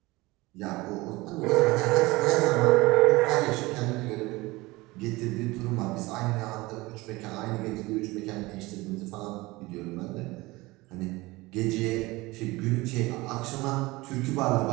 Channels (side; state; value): left; quieter; 21.4 dB